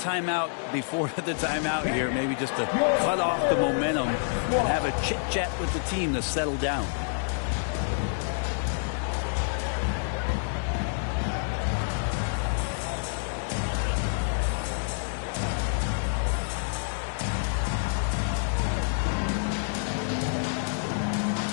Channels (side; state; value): right; silent; digital silence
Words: before the timeout here, maybe just to cut off the momentum and have a chit-chat with the team to settle down.